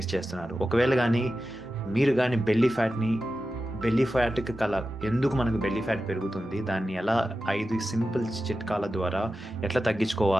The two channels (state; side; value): normal; both; correlation 0.93